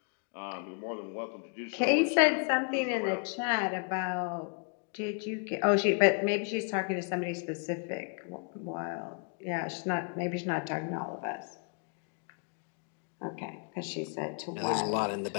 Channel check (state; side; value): quieter; right; 39.3 dB